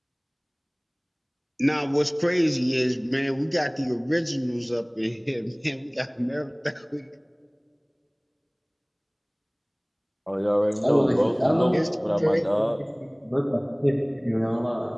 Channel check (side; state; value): both; identical; correlation 1.00